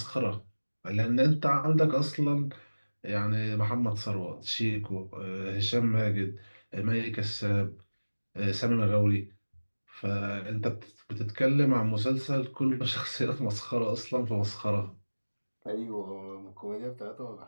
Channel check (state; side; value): inverted; both; correlation -1.00